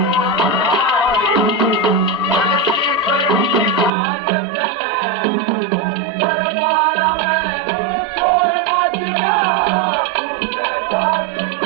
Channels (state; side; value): drops out; left; at 3.9 s